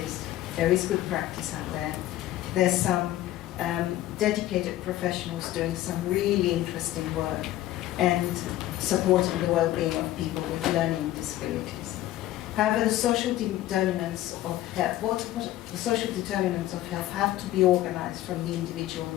is good practice out there. There's some dedicated professionals doing some really interesting work and supporting the well-being of people with learning disabilities. However, the social determinants of health, the social determinants of health have to be organized from the individual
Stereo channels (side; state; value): right; quieter; 14.6 dB